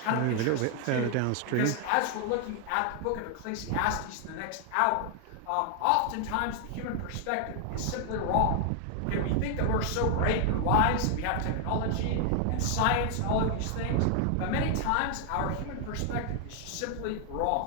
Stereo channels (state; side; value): different; both; correlation 0.00